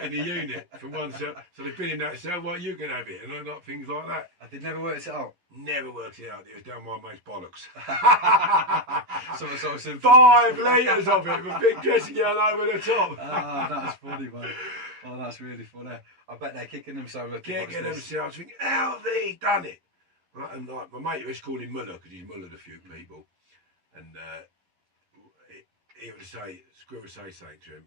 in the unit from one cell. So they've been in that cell, right, you can have it, and like things like that. I did never work it out. Never worked it out. It was down my mate's bollocks. Something so simple. 5 litres of it with a big dressing gown over the top. Ah, that's funny, man. Oh, that's really funny. I bet they're kicking themselves. Kicking themselves, thinking, how have they done it? And like, my mate was calling Muller because he's mullered a few people, and he would say, Screw would say something to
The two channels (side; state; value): left; late; 11 ms